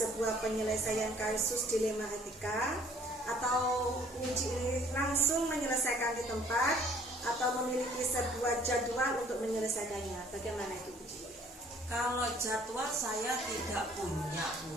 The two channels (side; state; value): both; normal; correlation 0.58